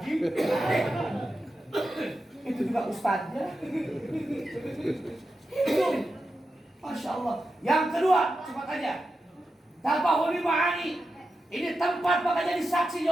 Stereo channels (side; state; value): both; normal; correlation 0.90